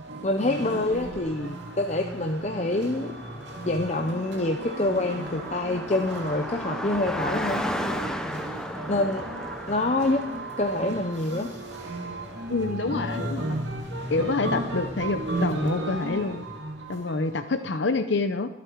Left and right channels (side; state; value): both; normal; correlation 0.33